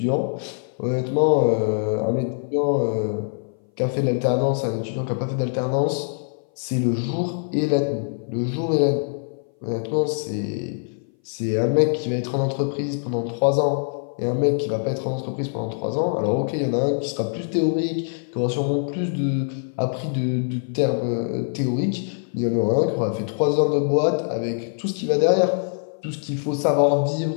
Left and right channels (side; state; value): right; silent; 59 dB below the other